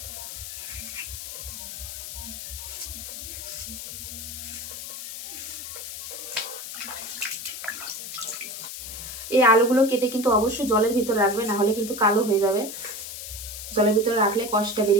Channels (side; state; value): left; noise; hiss, 8 dB below the sound